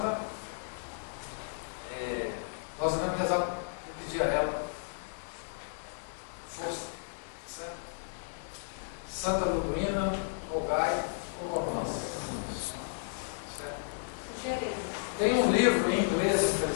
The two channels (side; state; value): right; silent; digital silence